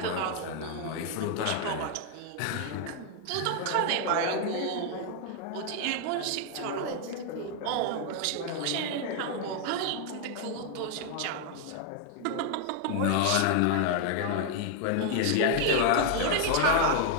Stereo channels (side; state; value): both; different; correlation 0.00